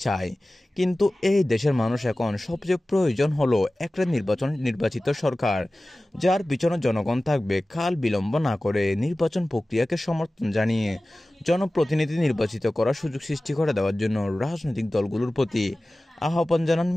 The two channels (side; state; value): both; normal; correlation 0.97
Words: চায়। কিন্তু এই দেশের মানুষ এখন সবচেয়ে প্রয়োজন হলো একটা নির্বাচিত সরকার, যার পিছনে জনগণ থাকবে। কাল বিলম্ব না করে নির্বাচন প্রক্রিয়াকে সমর্থন জানিয়ে জনপ্রতিনিধি নির্বাচিত করার সুযোগ সৃষ্টি করে দেওয়ার জন্য রাজনৈতিক দলগুলোর প্রতি আহ্বান জানান